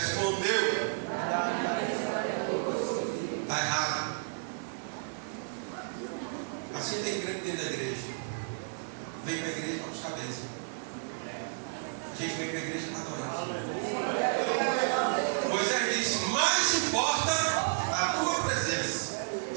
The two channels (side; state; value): left; silent; digital silence